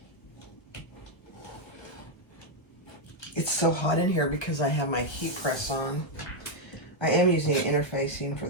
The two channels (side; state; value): right; late; 1.0 ms